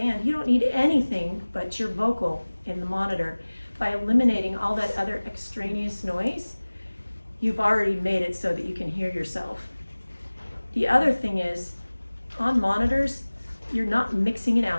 you don't need anything but your vocal in the monitor. By eliminating all that other extraneous noise, you've already made it so that you can hear yourself. The other thing is, on monitors, you're not mixing an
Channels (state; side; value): inverted; both; correlation -1.00